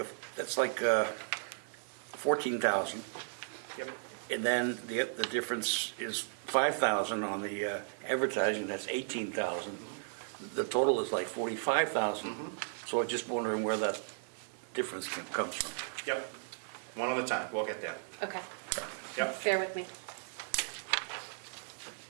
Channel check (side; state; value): left; silent; digital silence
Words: 14,000. Yep. And then the difference is 5,000 on the advertising, that's 18,000. The total is like 45,000. So I'm just wondering where that difference comes from. Yep. One at a time, we'll get there. Okay. Yep. Bear with me.